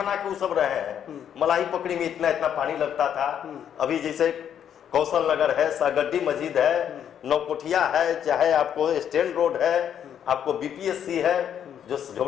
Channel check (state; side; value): quieter; right; 9.1 dB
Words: के वो सब रहे हैं। मलाई पकड़ी में इतना इतना पानी लगता था। अभी जैसे कौशल नगर है, सागड्डी मस्जिद है, नौकोठिया है, चाहे आपको स्टैंड रोड है, आपको बीपीएससी है, जो